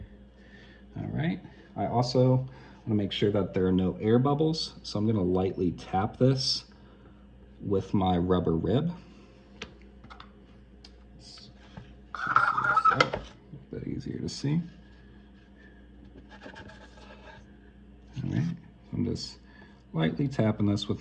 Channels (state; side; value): identical; both; correlation 1.00